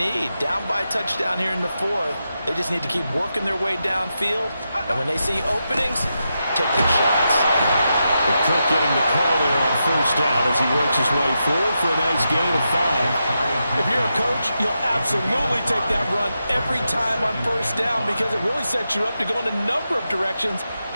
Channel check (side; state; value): both; inverted; correlation -0.87